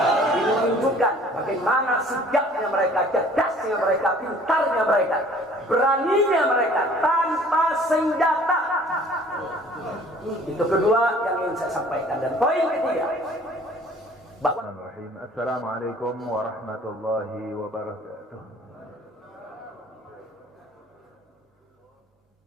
Ini menunjukkan bagaimana sigapnya mereka, cerdasnya mereka, pintarnya mereka, beraninya mereka tanpa senjata. Itu kedua yang ingin saya sampaikan. Dan poin ketiga, bahwa Assalamualaikum warahmatullahi wabarakatuh.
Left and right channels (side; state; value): both; normal; correlation 0.52